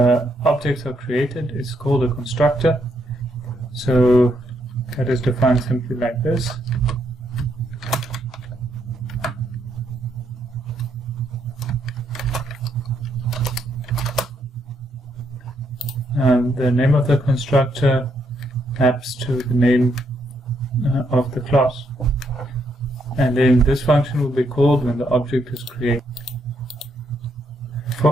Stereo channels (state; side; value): normal; both; correlation 0.75